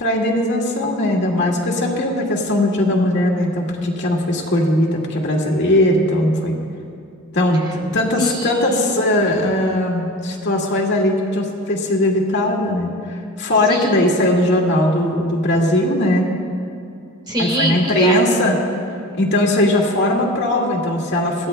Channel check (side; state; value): both; normal; correlation 0.37